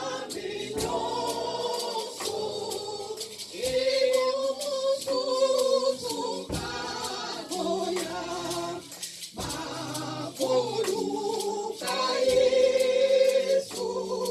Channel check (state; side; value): identical; both; correlation 1.00